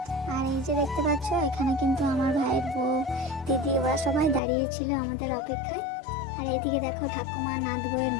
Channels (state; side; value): drops out; right; at 4.4 s